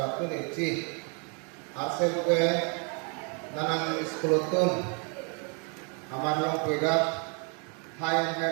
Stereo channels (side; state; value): left; quieter; 36.9 dB